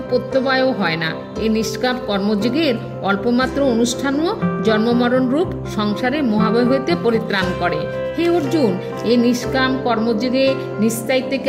প্রত্যবায়ও হয় না। এই নিষ্কাম কর্মযোগের অল্পমাত্র অনুষ্ঠানও জন্মমরণ রূপ সংসারে মহাভয় হইতে পরিত্রাণ করে। হে অর্জুন, এই নিষ্কাম কর্মযোগে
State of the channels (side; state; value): both; identical; correlation 1.00